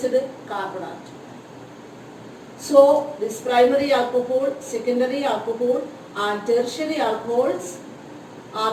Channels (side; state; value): both; identical; correlation 1.00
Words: carbon atom. So this primary alcohol, secondary alcohol and tertiary alcohols